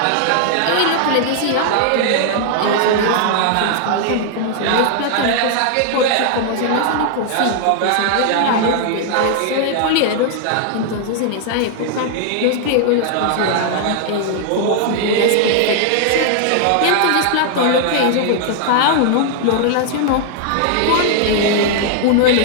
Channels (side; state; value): both; different; correlation 0.00